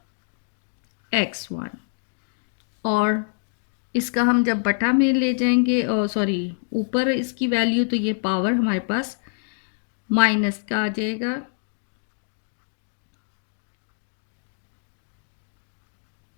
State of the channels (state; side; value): silent; right; digital silence